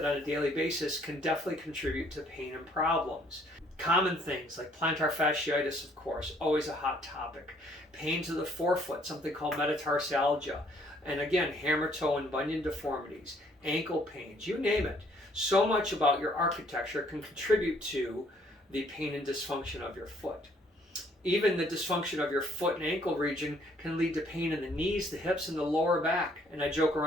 on a daily basis can definitely contribute to pain and problems. Common things like plantar fasciitis, of course, always a hot topic. Pain to the forefoot, something called metatarsalgia. And again, hammer toe and bunion deformities, ankle pains, you name it. So much about your architecture can contribute to the pain and dysfunction of your foot. Even the dysfunction of your foot and ankle region can lead to pain in the knees, the hips, and the lower back. And I joke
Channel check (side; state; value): both; normal; correlation 0.63